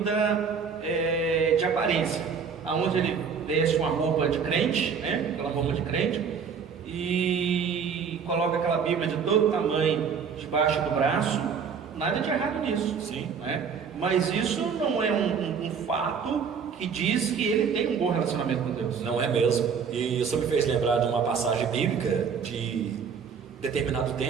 de aparência, aonde ele veste uma roupa de crente, né? Aquela roupa de crente, e coloca aquela Bíblia de todo tamanho debaixo do braço. Nada de errado nisso, sim, né? Mas isso não é um fato que diz que ele tem um bom relacionamento com Deus. Não é mesmo. E isso me fez lembrar de uma passagem bíblica de determinado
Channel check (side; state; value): left; quieter; 6.4 dB